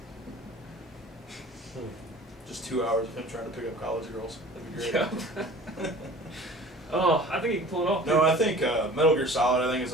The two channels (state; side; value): normal; both; correlation 0.44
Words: Just 2 hours of him trying to pick up college girls. That'd be great. Yeah. Oh, I think you can pull it off. No, I think Metal Gear Solid. I think is